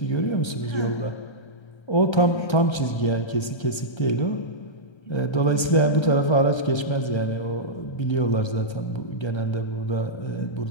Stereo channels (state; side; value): late; right; 1.3 ms